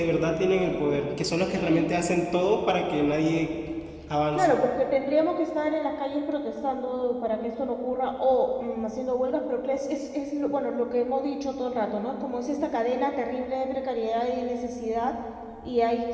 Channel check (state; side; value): identical; both; correlation 1.00